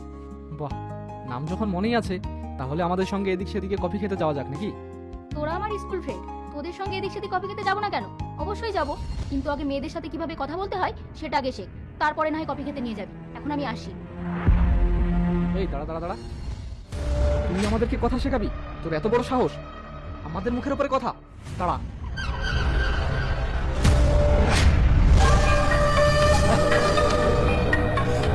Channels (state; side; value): identical; both; correlation 1.00